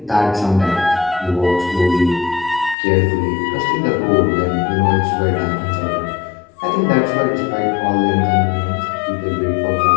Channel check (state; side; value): drops out; right; at 2.8 s